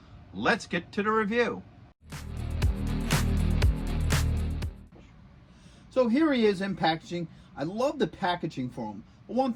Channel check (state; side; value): identical; both; correlation 1.00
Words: let's get to the review. So here he is in packaging. I love the packaging for him. One